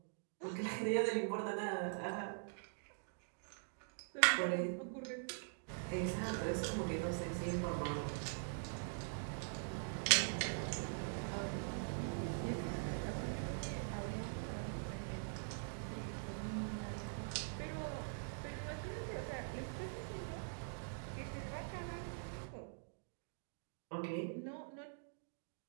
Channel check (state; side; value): silent; left; digital silence